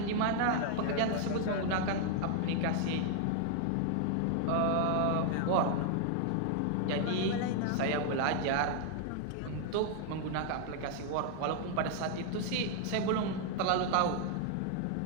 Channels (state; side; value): different; both; correlation 0.00